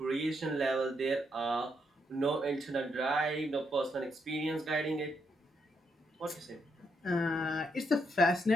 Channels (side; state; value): both; normal; correlation 0.78